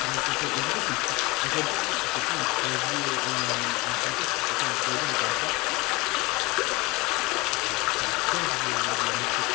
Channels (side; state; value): right; quieter; 23.7 dB